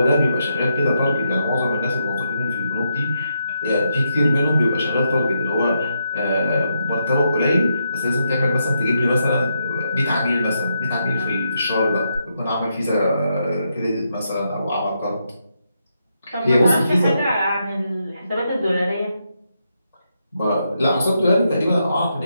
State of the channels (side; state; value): both; inverted; correlation -0.82